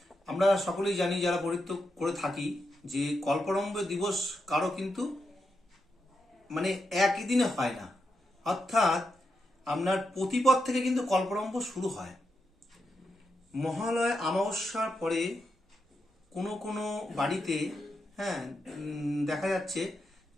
আমরা সকলেই জানি যারা পৌরোহিত্য করে থাকি যে কল্পারম্ভ দিবস কারো কিন্তু মানে একই দিনে হয় না। অর্থাৎ আপনার প্রতিপদ থেকে কিন্তু কল্পারম্ভ শুরু হয়। মহালয় অমাবস্যার পরে কোনো কোনো বাড়িতে দেখা যাচ্ছে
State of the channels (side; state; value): both; normal; correlation 0.85